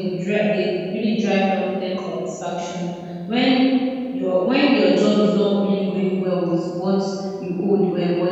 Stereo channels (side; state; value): both; identical; correlation 1.00